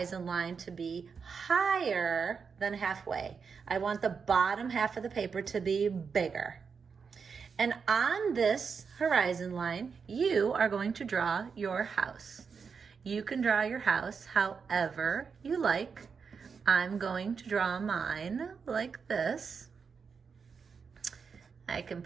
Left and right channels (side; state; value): left; quieter; 5.8 dB